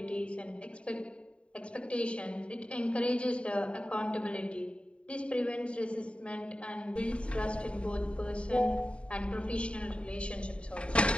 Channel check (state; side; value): late; right; 0.059 ms